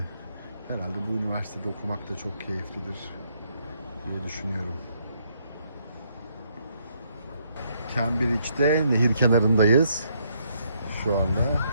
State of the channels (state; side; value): inverted; both; correlation -0.72